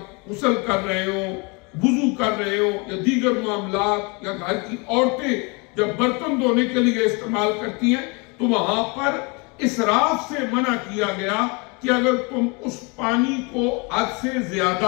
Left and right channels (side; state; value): right; quieter; 30.2 dB